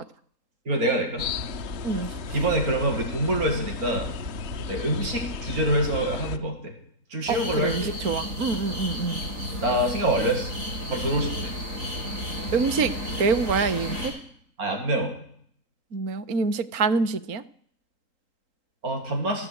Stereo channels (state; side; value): late; left; 3.8 ms